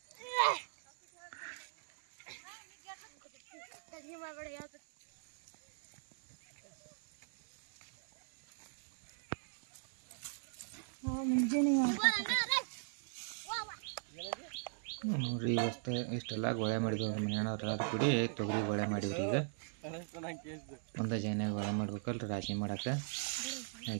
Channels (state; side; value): silent; left; 52 dB below the other